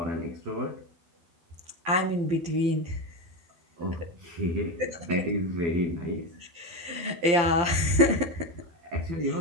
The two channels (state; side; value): late; left; 12 ms